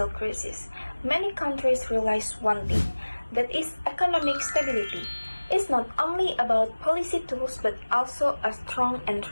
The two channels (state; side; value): inverted; both; correlation -1.00